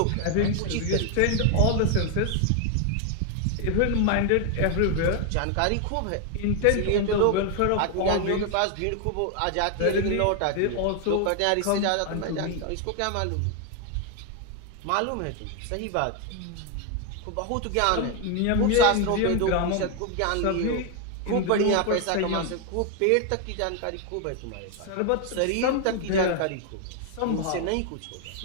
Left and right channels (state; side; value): different; both; correlation 0.01